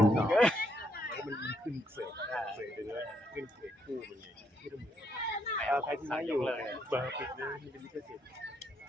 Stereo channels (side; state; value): both; normal; correlation 0.74